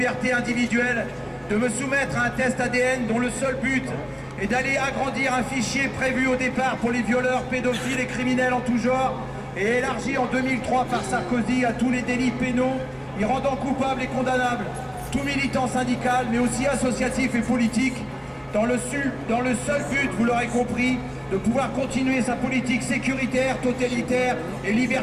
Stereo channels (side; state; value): both; identical; correlation 1.00